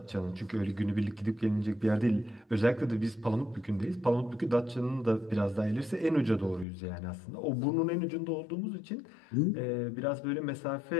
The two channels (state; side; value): drops out; right; at 6.7 s